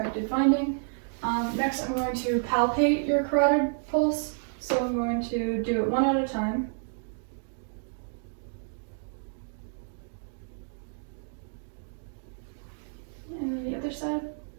finding. Next, I'm going to palpate your carotid pulse. So I'm going to do it one at a time. And then the other side.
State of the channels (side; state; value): left; silent; digital silence